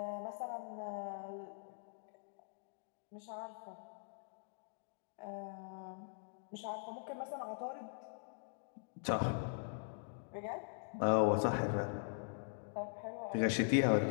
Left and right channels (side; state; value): right; silent; digital silence